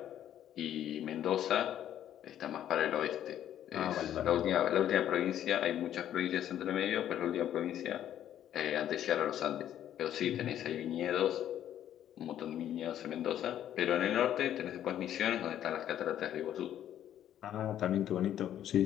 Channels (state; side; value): quieter; right; 11.0 dB